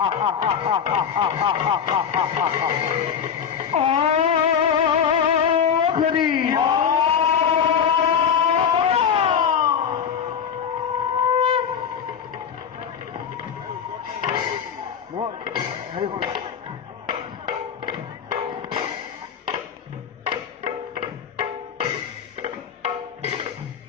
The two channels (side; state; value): right; quieter; 7.6 dB